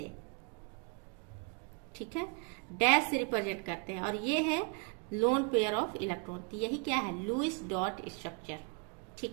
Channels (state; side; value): quieter; left; 32.9 dB